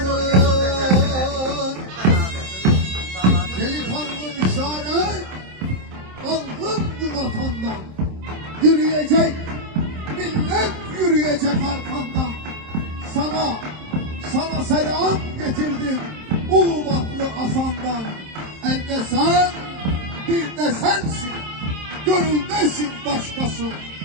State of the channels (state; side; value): late; left; 27 ms